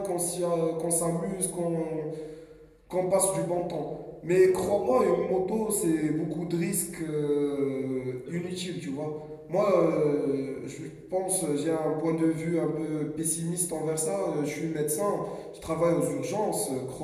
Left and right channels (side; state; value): both; identical; correlation 1.00